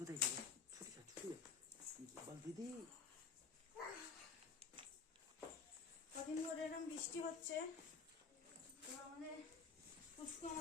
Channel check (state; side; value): quieter; right; 5.3 dB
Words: গেল, ছুটি যা ছুটি যা, বল দিদি। কদিন ধরে এরকম বৃষ্টি হচ্ছে, তো আমাদের পুষ্কু